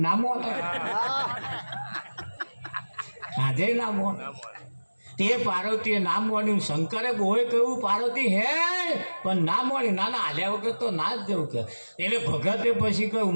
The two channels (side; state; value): both; inverted; correlation -1.00